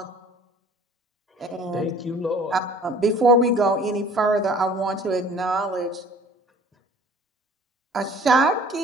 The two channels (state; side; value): normal; both; correlation 0.50